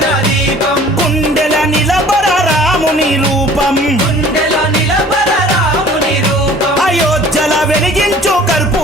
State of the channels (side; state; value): both; normal; correlation 0.50